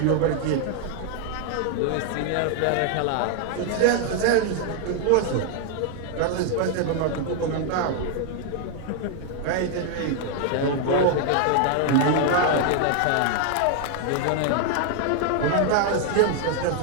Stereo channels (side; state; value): both; different; correlation 0.00